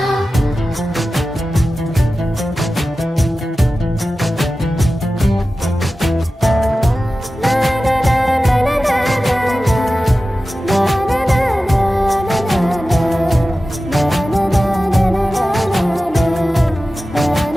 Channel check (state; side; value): normal; both; correlation 0.95